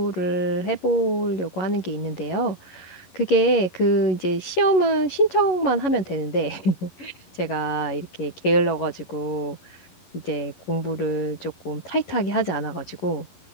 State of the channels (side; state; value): right; late; 11 ms